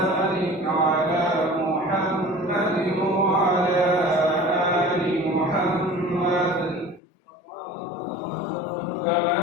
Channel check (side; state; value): right; drops out; at 7.0 s